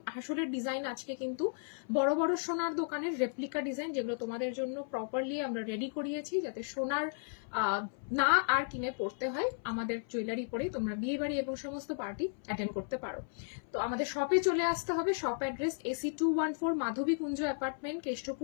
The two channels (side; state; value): right; silent; 55 dB below the other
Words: হাসুলের ডিজাইন আজকে কিন্তু বড় বড় সোনার দোকানের রেপ্লিকা ডিজাইন, যেগুলো তোমাদের জন্য প্রপারলি আমরা রেডি করিয়েছি, যাতে সোনার না আর কিনে পড়তে হয়। আমাদের জুয়েলারি পরে তোমরা বিয়ে বাড়ি এবং সমস্ত পার্টি অ্যাটেন্ড করতে পারো। তো আমাদের শপে চলে আসতে হবে। শপ অ্যাড্রেস AC 214 মাধবী কুঞ্জ অ্যাপার্টমেন্ট,